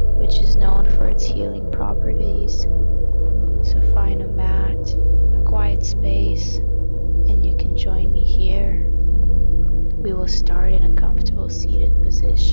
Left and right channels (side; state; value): both; inverted; correlation -1.00